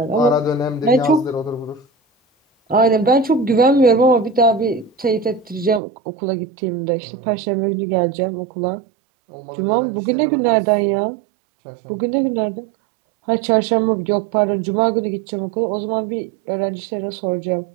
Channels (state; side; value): drops out; left; at 5.8 s